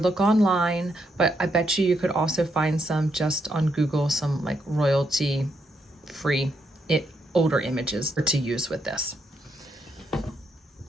online, but I bet you could also find some just on Google, some like royalty free older images to use with this.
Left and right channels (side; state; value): both; normal; correlation 0.78